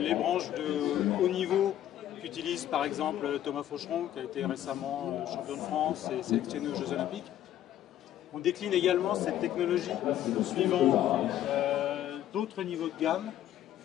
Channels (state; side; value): quieter; right; 12.0 dB